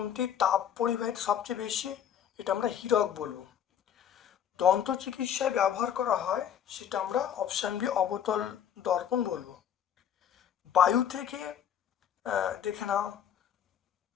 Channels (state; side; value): quieter; right; 9.4 dB